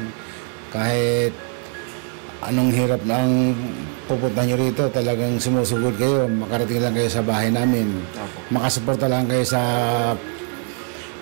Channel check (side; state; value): left; quieter; 39.8 dB